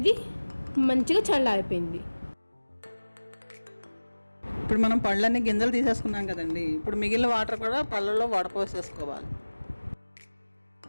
మంచిగా చల్లారిపోయింది. ఇప్పుడు మనం పళ్ళన్నీ గింజలు తీసేసుకున్నాం కదండి, ఇప్పుడు మిగిలిన వాటర్ కూడా పళ్ళల్లో వడపోసేసుకోవాలి.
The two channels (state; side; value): inverted; both; correlation -1.00